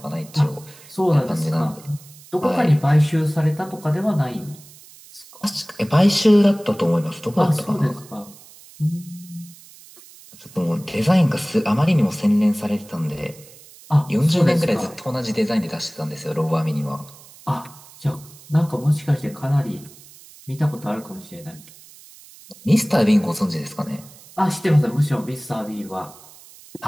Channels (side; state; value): right; noise; hiss, 22 dB below the sound